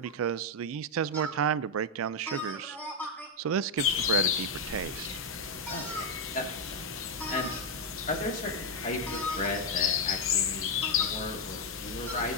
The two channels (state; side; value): normal; both; correlation 0.02